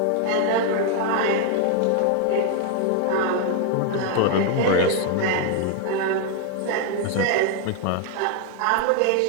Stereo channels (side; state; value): both; different; correlation 0.00